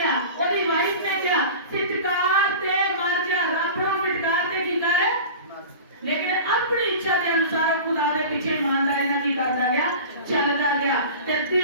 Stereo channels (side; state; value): both; inverted; correlation -0.35